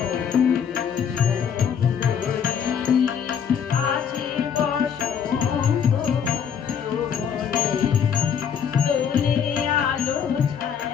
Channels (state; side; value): quieter; right; 7.7 dB